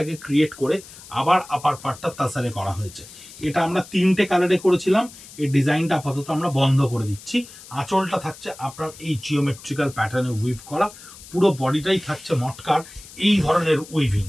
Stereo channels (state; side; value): noise; left; hiss, 18 dB below the sound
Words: ক্রিয়েট করে আবার আপার পার্টটা তাসারে করা হয়েছে। এটা আমরা 3টে কালারে করেছিলাম। এই ডিজাইনটা আপাতত আমরা বন্ধ করে দিচ্ছি। আঁচলটা থাকছে আপনার এই জিওমেট্রিক্যাল প্যাটার্নে উইভ করা, পুরো বডিটাই থাকছে মটকার এই ধরনের